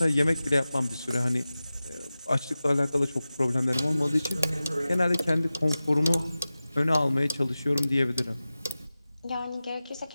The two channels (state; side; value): inverted; both; correlation -0.96